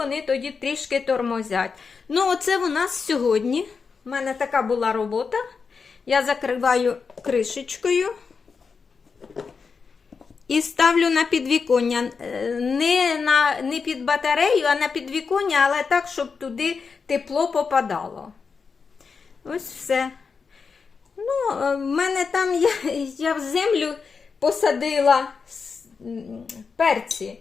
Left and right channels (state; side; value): quieter; right; 5.3 dB